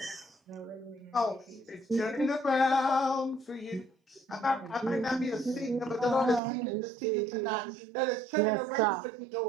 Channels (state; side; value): drops out; left; at 6.4 s